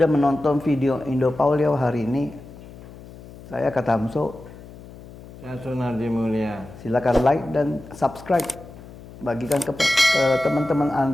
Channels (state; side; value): noise; left; hum, 18 dB below the sound